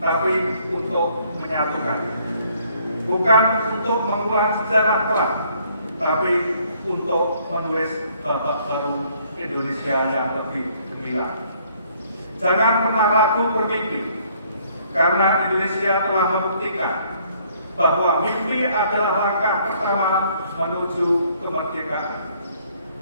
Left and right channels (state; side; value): inverted; both; correlation -0.64